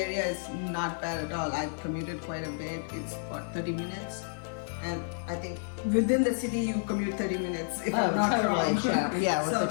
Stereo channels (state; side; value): silent; right; 57 dB below the other